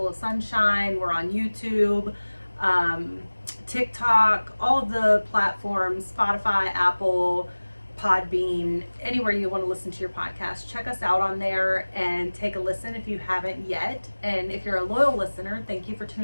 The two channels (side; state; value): both; inverted; correlation -1.00